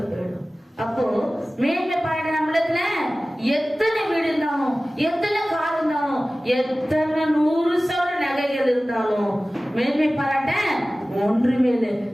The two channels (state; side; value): normal; both; correlation 0.97